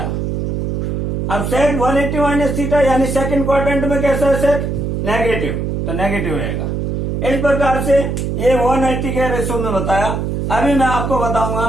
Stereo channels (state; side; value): noise; right; hum, 1 dB below the sound